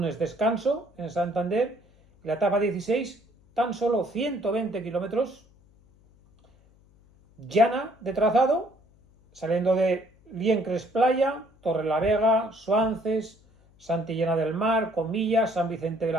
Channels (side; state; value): left; noise; hum, 30 dB below the sound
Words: descanso en Santander. La etapa 16, tan solo 120 kilómetros. Llana de trazado, saliendo de Liencres, Playa, Torrelavega, Suances, Santillana del Mar, Comillas, San Vicente de